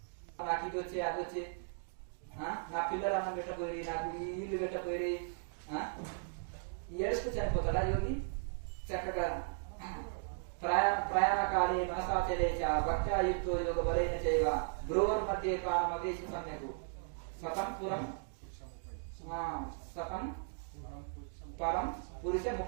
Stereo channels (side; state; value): left; silent; digital silence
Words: నాకు ఇది వచ్చి అది వచ్చి, నా పిల్లలు అన్నం పెట్టపోయి, నాకు ఈ ఇల్లు పెట్టపోయి ఏడుస్తూ చనిపోతాడా యోగి? చక్కగా ప్రయాణకాలే మనసాచరే చ భక్త్యా యుక్తో యోగ బలేన చైవ భ్రువోర్मध्ये ప్రాణమవేశి సమ్యక్ సతం పురం సతం పరం పురుష